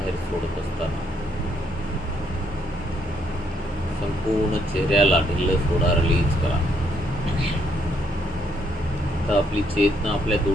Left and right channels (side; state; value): both; normal; correlation 0.71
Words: सोडत असताना संपूर्ण चेहऱ्याला ढिल्लं सोडा, रिलीज करा. आता आपली चेतना आपल्या